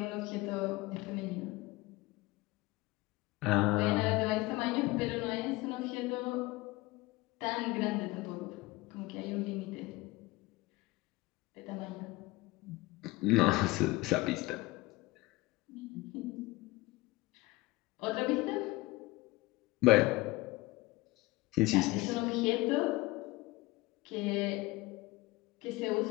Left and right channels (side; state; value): right; quieter; 20.9 dB